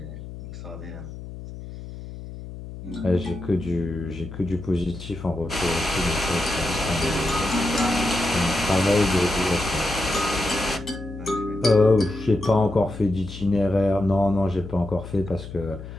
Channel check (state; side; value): noise; left; hum, 12 dB below the sound